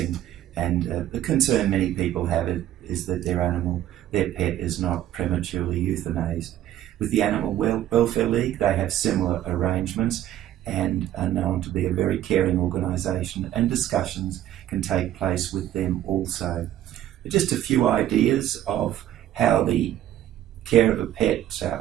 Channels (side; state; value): left; quieter; 12.4 dB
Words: And the concern many people have is that their pet is not prematurely euthanized. With the Animal Welfare League, they have similar arrangements and are known to be a very caring organisation, and discussions can take place with them also. Just a few ideas of how the care of a pet